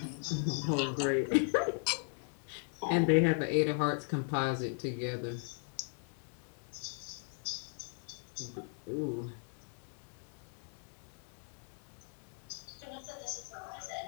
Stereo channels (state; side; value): silent; right; 53 dB below the other